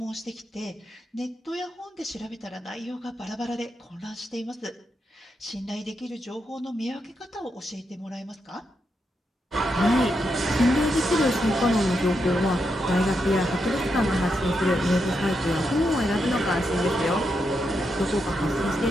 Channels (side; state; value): both; normal; correlation 0.83